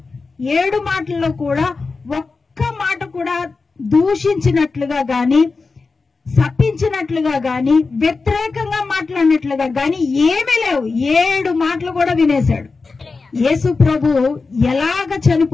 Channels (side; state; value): right; quieter; 4.2 dB